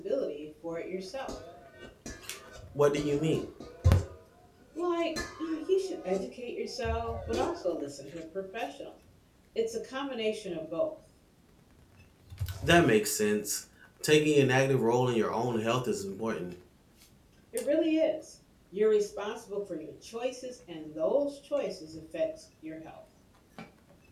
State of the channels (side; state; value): both; identical; correlation 1.00